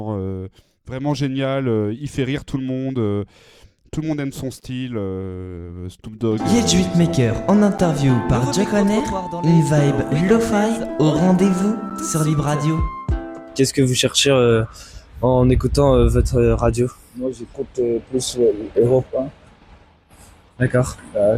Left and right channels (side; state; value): both; identical; correlation 1.00